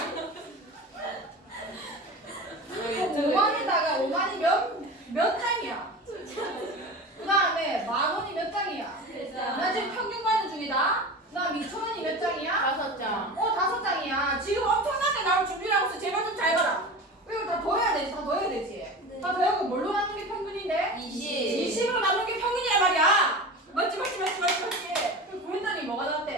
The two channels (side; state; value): both; normal; correlation 0.31